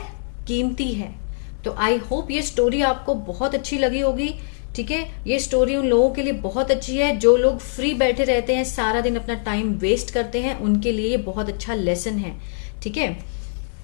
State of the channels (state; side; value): silent; right; 56 dB below the other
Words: कीमती है। तो आई होप ये स्टोरी आपको बहुत अच्छी लगी होगी। ठीक है, ये स्टोरी उन लोगों के लिए बहुत अच्छी है जो लोग फ्री बैठे रहते हैं, सारा दिन अपना टाइम वेस्ट करते हैं, उनके लिए ये बहुत अच्छा लेसन है। ठीक है,